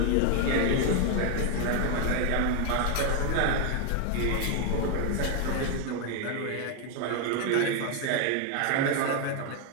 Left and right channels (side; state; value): both; different; correlation 0.01